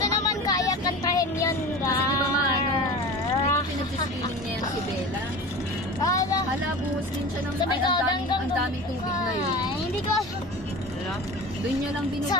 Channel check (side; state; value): both; normal; correlation 0.34